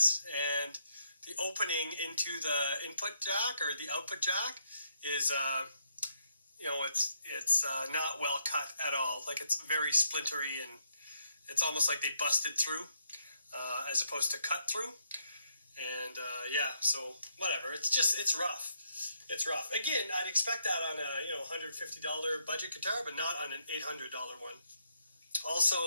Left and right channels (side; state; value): both; inverted; correlation -0.75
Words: and the opening into the input jack or the output jack is, it's not well cut at all. Like, it's very splintery, and it's almost like they busted through as opposed to cut through. And so whatever. It's rough. It's rough. Again, I'd expect that on a $150 budget guitar, but not on an $800 one.